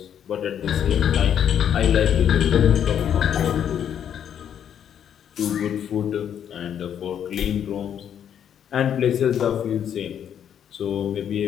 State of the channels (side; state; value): right; quieter; 9.1 dB